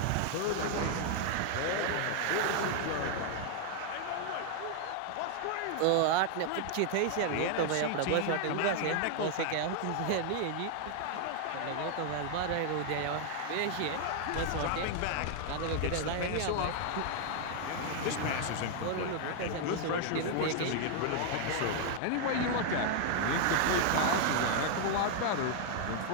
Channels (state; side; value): different; both; correlation 0.00